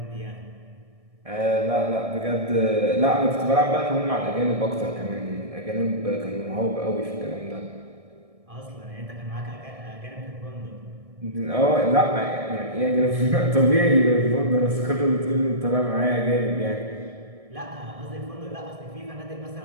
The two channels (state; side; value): late; left; 1.6 ms